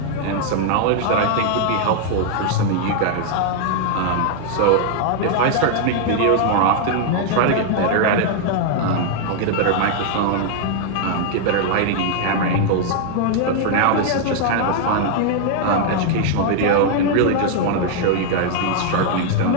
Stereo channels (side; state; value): both; different; correlation 0.00